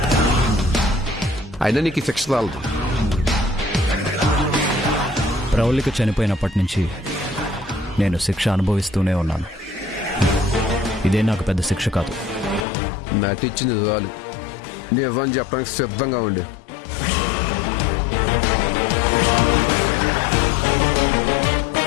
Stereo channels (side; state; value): right; drops out; at 12.7 s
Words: అయినా నీకు ఈ శిక్ష చాలదు. ప్రవళిక చనిపోయినప్పటి నుంచి నేను శిక్ష అనుభవిస్తూనే ఉన్నాను. ఇదే నాకు పెద్ద శిక్ష కాదు. నటించింది చాలు. నిజం చెప్పడానికి సిద్ధంగా ఉండే.